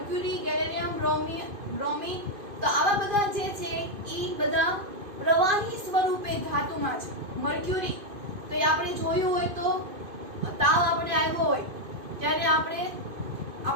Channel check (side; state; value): left; late; 2.5 ms